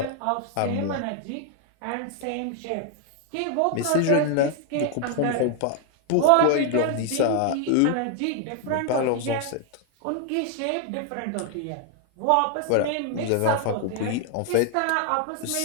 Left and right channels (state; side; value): different; both; correlation 0.00